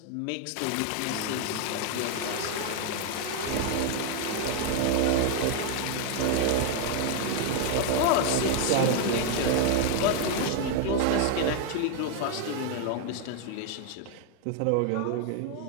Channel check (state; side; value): different; both; correlation 0.00